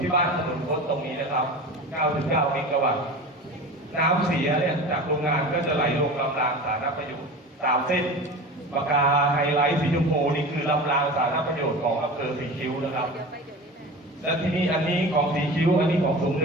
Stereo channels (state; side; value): normal; both; correlation 0.33